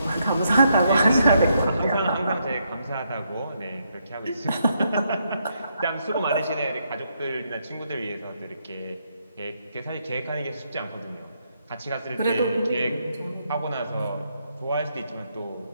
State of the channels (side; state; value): both; inverted; correlation -0.77